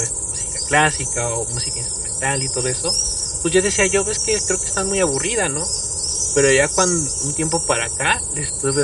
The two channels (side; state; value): both; identical; correlation 1.00